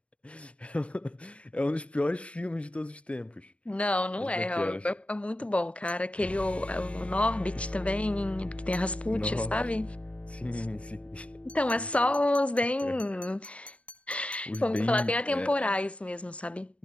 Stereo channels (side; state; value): right; late; 0.063 ms